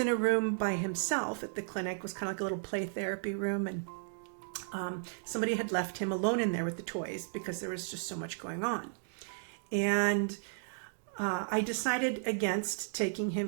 a room by himself at the clinic. It was kind of like a little play therapy room. And somebody had left him alone in there with the toys because there was just so much going on. And I decided against taking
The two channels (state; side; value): silent; left; digital silence